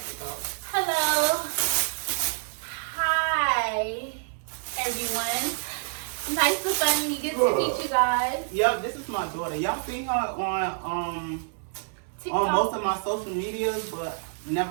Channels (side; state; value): left; silent; 60 dB below the other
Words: about. Hello. Hi, everyone. Nice to finally get to meet you guys. Yep, this is my daughter. Y'all seen her on TikTok. most of my social medias, but